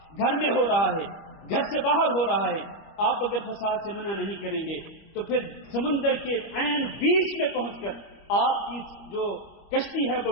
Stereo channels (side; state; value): right; late; 25 ms